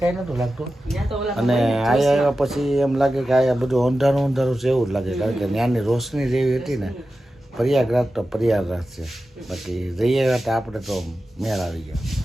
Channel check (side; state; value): both; normal; correlation 0.93